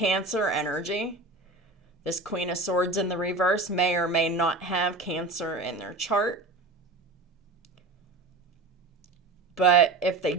energy. This Queen of Swords in the reverse may or may not have Cancer in their chart. But if they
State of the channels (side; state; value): left; quieter; 3.2 dB